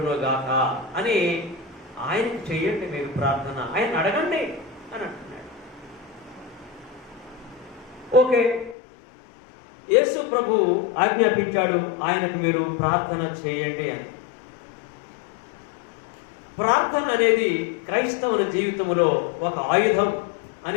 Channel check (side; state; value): right; drops out; at 8.8 s